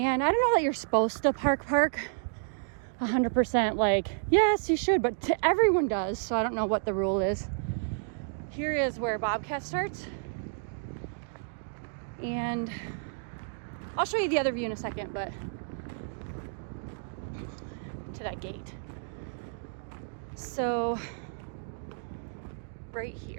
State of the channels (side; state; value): left; silent; digital silence